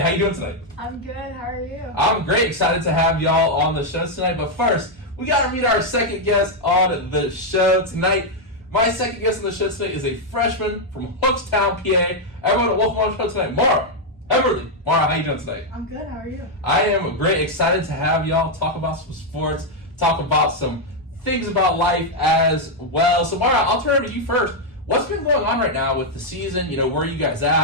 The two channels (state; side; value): normal; both; correlation 0.00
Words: how you doing tonight? I'm good. How are you? I'm great. Excited to have y'all on the show tonight. But first, we got to meet our second guest on the show tonight. My second guest on the show tonight is a freshman from Hookstown, PA. Everyone, welcome on the show tonight, Maura. Heberle. Maura, how you doing tonight? I'm good. How are you? I am great. Excited to have y'all talk about some sports, talk about some things about life as well. So, Maura, I'll turn it over to you first. What's been going on right now with the season? You know, where are you guys